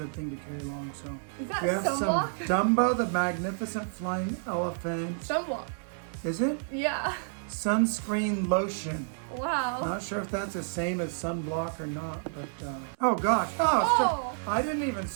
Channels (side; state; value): left; silent; digital silence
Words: thing to carry along. So Is that we have sunblock? some Dumbo, the magnificent flying elephant. Sunblock. Is it? Yeah. Sunscreen lotion. Wow. Not sure if that's the same as sunblock or not, but oh gosh! Oh! I didn't even